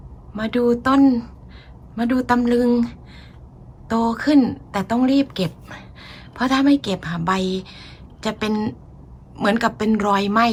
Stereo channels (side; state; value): both; identical; correlation 1.00